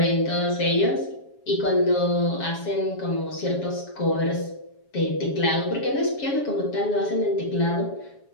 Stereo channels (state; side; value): late; right; 7.2 ms